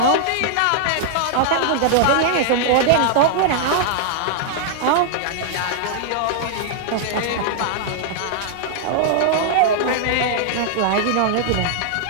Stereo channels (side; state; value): both; different; correlation -0.01